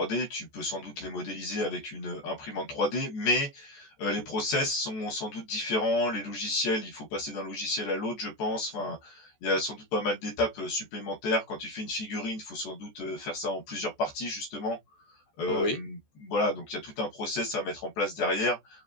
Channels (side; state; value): right; late; 14 ms